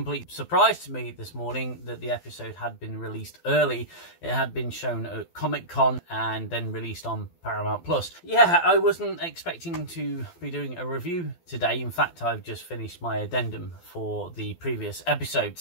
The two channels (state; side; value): late; right; 12 ms